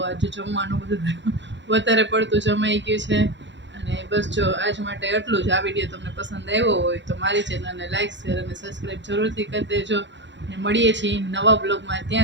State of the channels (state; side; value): late; left; 0.53 ms